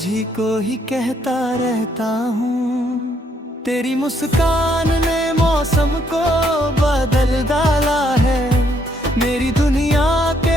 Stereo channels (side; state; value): both; normal; correlation 0.71